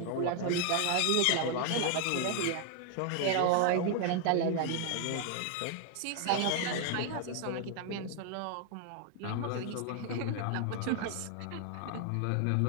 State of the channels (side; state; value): both; different; correlation 0.00